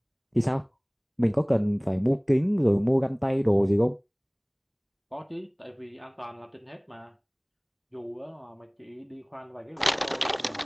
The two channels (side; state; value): both; identical; correlation 1.00